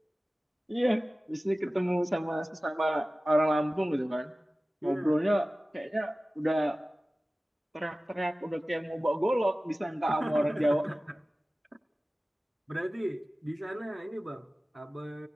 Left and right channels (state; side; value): normal; both; correlation 0.97